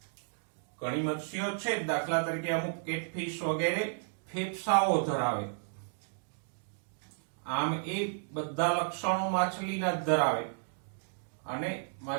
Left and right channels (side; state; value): left; silent; digital silence